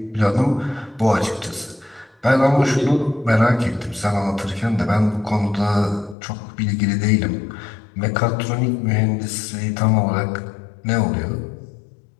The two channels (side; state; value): right; drops out; at 6.2 s